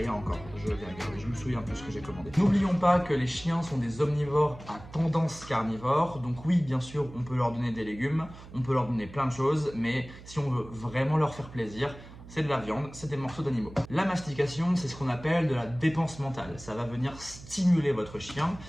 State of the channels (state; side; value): noise; right; hum, 17 dB below the sound